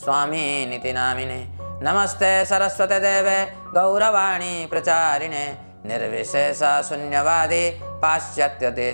स्वामिनिति नामिने। नमस्ते सरस्वते देवे गौरवाणी प्रचारिणे निर्विशेष शून्यवादी पाश्चात्य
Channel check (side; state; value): both; inverted; correlation -1.00